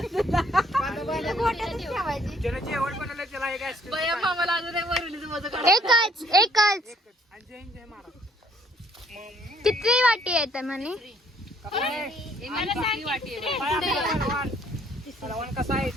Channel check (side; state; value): both; normal; correlation 0.63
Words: ज्यानं जेवण बनवलं त्याला एक आईस्क्रीम. एकच आणि जय जय महाराज. किती वाटी येत म्हणे. हलवण कसा आहे